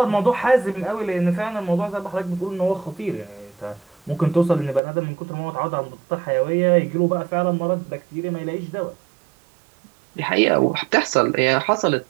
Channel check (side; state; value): left; drops out; at 4.8 s